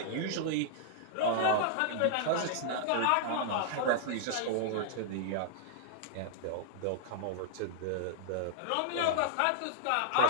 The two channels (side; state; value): both; different; correlation -0.01